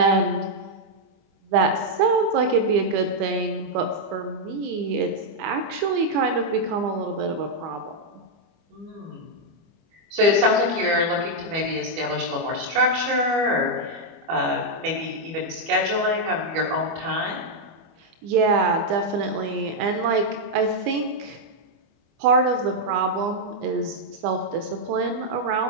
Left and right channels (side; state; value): left; late; 25 ms